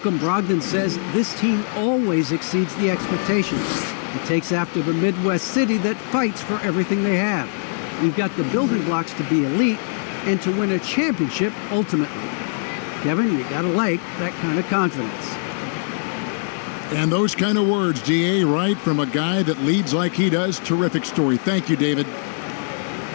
Brogdon says this team always exceeds the expectations. It takes after the Midwest city that fights for everything they have. We've got the building blocks to be elite and to win a championship ultimately. Kevin, you gotta like that kind of confidence. And those kind of words, DA, right from a guy that leads like he does. Terrific story. Thank you, David.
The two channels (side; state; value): right; silent; digital silence